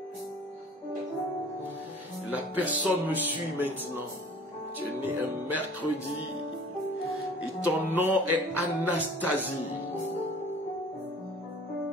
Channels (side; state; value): both; normal; correlation 0.48